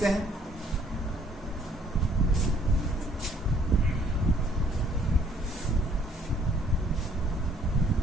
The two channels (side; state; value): both; normal; correlation 0.61